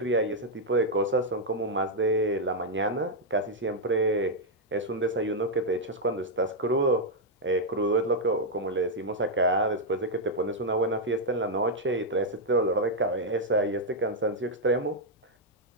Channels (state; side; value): normal; both; correlation -0.02